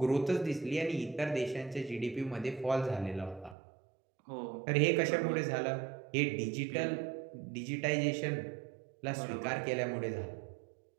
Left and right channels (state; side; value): drops out; left; at 3.6 s